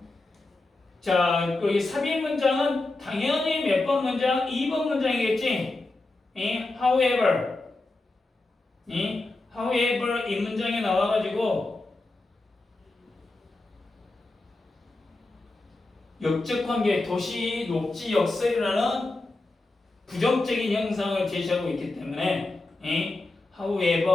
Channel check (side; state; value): right; quieter; 3.1 dB